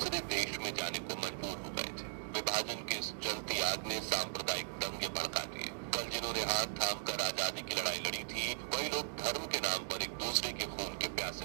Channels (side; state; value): left; silent; digital silence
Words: देश में जाने को मजबूर हो गए थे। विभाजन की इस जलती आग ने सांप्रदायिक दंगे भड़का दिए। कल जिन्होंने हाथ थाम कर आजादी की लड़ाई लड़ी थी, वही लोग धर्म के नाम पर एक दूसरे के खून के